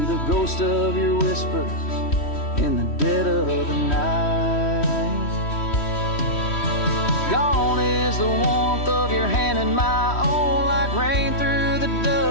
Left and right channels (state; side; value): late; right; 3.1 ms